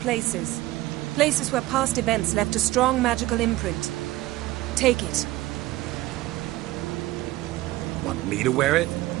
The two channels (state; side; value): quieter; left; 17.5 dB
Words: Places where past events left a strong magical imprint. Take it. Want me to wear it?